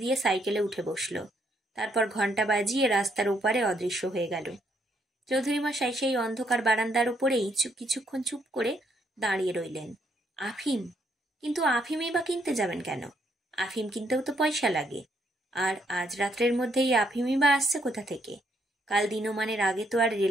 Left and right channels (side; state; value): both; normal; correlation 0.72